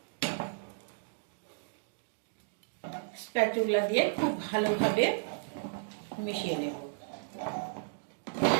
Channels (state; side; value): silent; left; digital silence